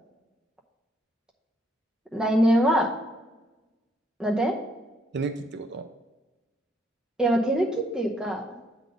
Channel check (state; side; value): normal; both; correlation 0.71